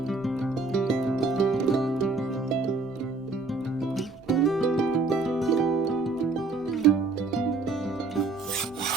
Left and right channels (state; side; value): quieter; left; 3.7 dB